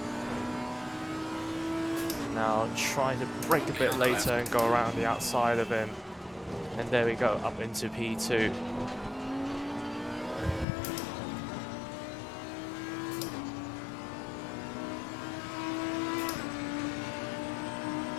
Now try to brake a bit later and go around the outside of him. And there we go, up into P2.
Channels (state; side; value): drops out; right; at 10.7 s